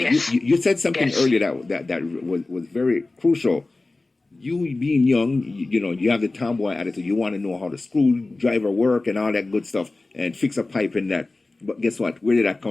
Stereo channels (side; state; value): right; quieter; 3.2 dB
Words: Yes. you said something Yes. earlier that was very crucial. You being young, you know, you have the tomboy attitude. You want to know how the screwdriver work and all that good stuff and fix a pipe in that. But guess what? Where did that